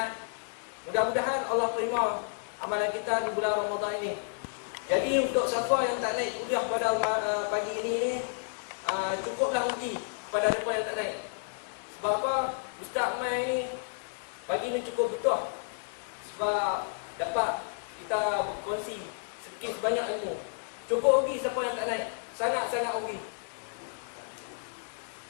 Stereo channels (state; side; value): silent; right; digital silence